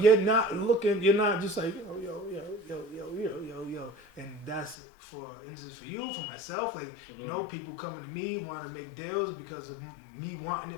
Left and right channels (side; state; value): right; drops out; at 4.8 s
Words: not looking, you're not just like, yo. And that's for instance, for you, for myself, like, you know, people coming to me want to make deals because of me wanting